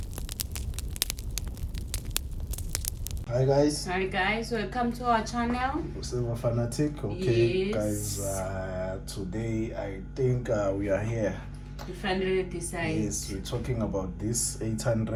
Hi guys, welcome to our channel. Silver Fanatic. Okay, guys, today I think we are here. We finally decided. Yes, we're talking about this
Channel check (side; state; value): both; identical; correlation 1.00